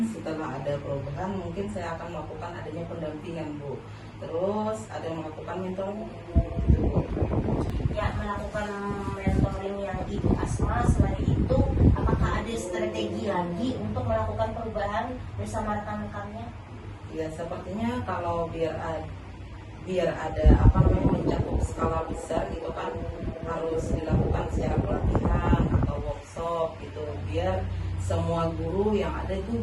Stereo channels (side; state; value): both; identical; correlation 1.00